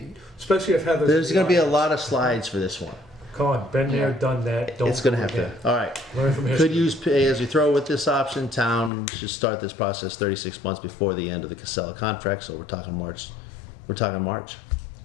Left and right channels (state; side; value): drops out; right; at 8.9 s